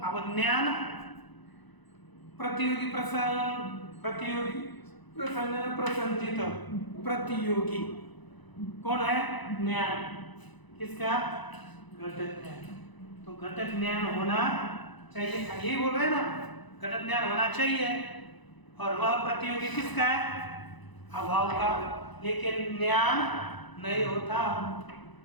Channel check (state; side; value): late; right; 1.0 ms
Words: अब ज्ञान प्रतियोगी प्रसंजन प्रसंजित प्रतियोगी कौन है? ज्ञान। किसका? घटक ज्ञान। तो घटक ज्ञान होना चाहिए, यही बोल रहे हैं ना, घटक ज्ञान होना चाहिए। और वह प्रतियोगी किसका है? अभाव का। लेकिन ज्ञान नहीं होता,